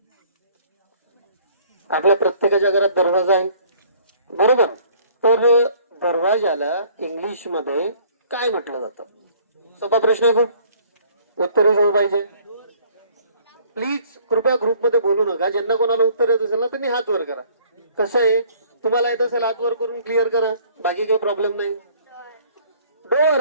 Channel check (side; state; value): both; inverted; correlation -0.57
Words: आपल्या प्रत्येकाच्या घरात दरवाजा आहे बरोबर, तर दरवाजाला इंग्लिश मध्ये काय म्हटलं जातं? सोपा प्रश्न आहे खूप, उत्तरही जवळ पाहिजे. प्लीज कृपया ग्रुपमध्ये बोलू नका, ज्यांना कोणाला उत्तर येत असेल ना त्यांनी हात वर करा. कसं आहे, तुम्हाला येत असेल हात वर करून क्लिअर करा, बाकी काही प्रॉब्लेम नाही. डोर,